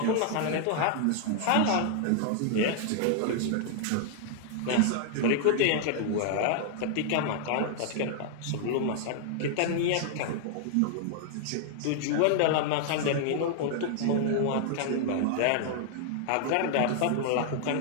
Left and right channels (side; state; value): both; different; correlation 0.00